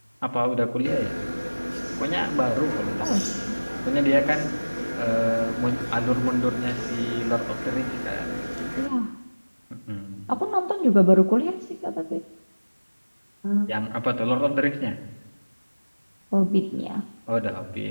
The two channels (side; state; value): both; inverted; correlation -1.00